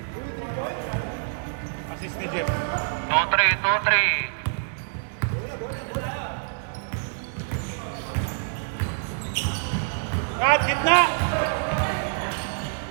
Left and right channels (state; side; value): silent; left; digital silence